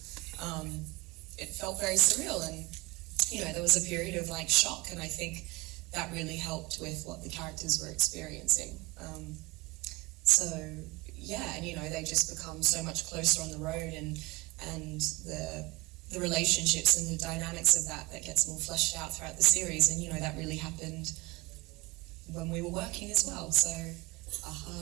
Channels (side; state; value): left; quieter; 23.2 dB